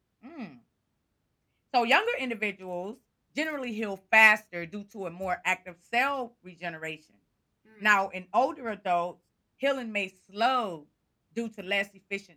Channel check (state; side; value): identical; both; correlation 1.00